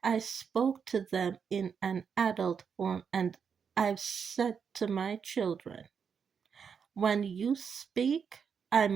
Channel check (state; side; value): quieter; left; 6.6 dB